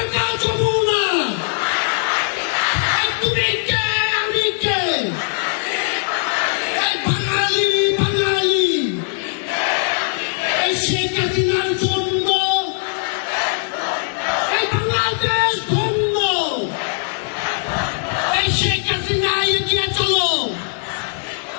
যমুনা তুমি কে আমি কে এই বাঙালি বাঙালি এই শেখ হাসিনার জন্য এই বাংলাদেশ ধন্য এই শেখ হাসিনা এগিয়ে চলো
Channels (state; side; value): silent; right; digital silence